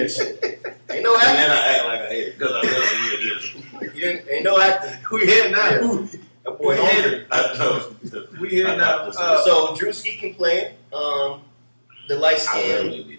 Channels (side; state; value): both; inverted; correlation -1.00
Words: shit. Ain't no And acting. then I act like I hate it because I really hear this. Ain't no acting. we here now? That boy We hungry. I know. We here now. So Drewski can play. The light I skin. really be